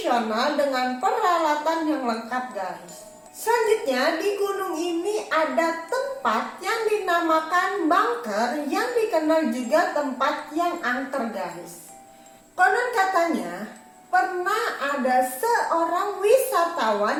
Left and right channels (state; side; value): identical; both; correlation 1.00